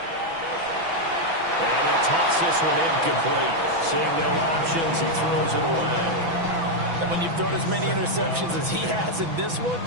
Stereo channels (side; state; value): left; late; 6.0 ms